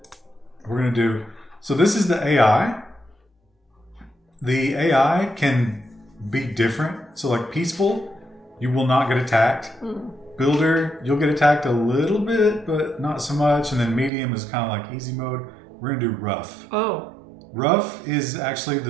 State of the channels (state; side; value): drops out; left; at 14.1 s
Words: We're gonna do, so this is the AI. The AI can be different. So like peaceful, you will not get attacked. Builder, you'll get attacked a little bit, but not so much. And then medium is kind of like easy mode. We're gonna do rough. Oh. Rough is actually